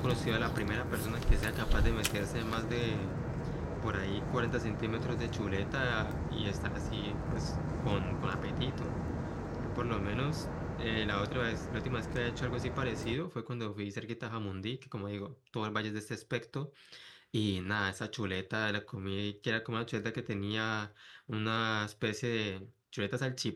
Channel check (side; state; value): both; identical; correlation 1.00